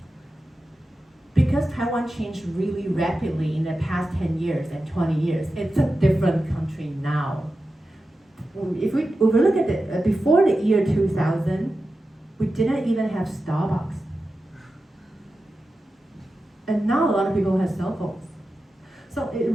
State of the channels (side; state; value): both; normal; correlation 0.92